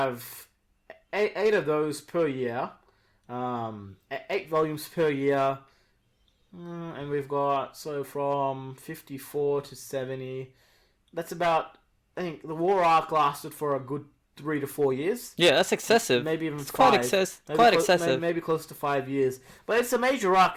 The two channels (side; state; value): both; identical; correlation 1.00